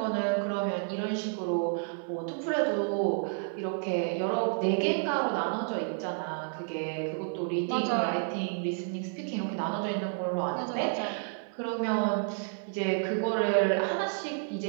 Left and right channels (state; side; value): silent; left; 57 dB below the other